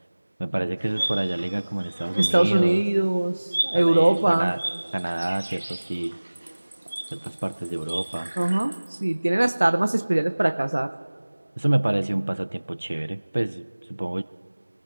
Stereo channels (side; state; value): both; inverted; correlation -1.00